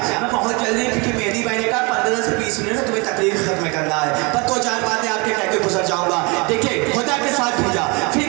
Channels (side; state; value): left; quieter; 28.7 dB